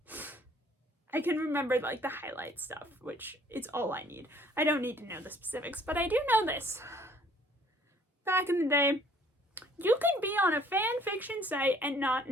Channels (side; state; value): both; normal; correlation 0.58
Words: can remember like the highlight stuff, which is all I need. I don't need to know the specifics, but I do know this. Back in the day, you could be on a fan fiction site and not